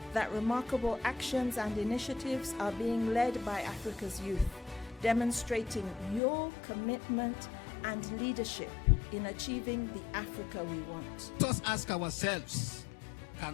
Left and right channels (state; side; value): drops out; right; at 6.2 s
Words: that remarkable actions and initiatives are being led by Africa's youth, demonstrating your commitment and leadership in achieving the Africa we want. Let us ask ourselves,